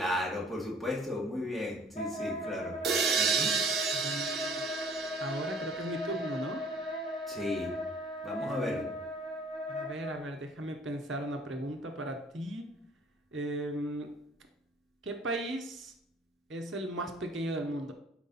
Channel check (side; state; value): both; normal; correlation 0.54